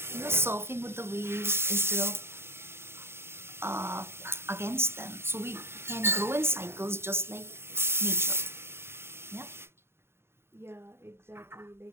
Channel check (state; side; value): late; left; 0.12 ms